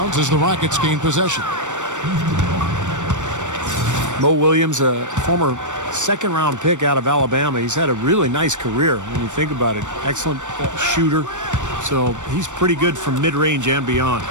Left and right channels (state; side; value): late; left; 0.85 ms